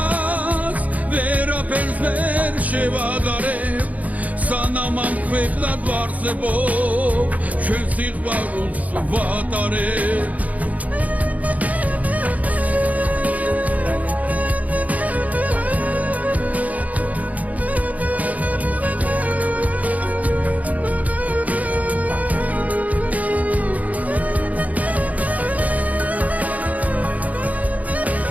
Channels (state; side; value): late; left; 0.073 ms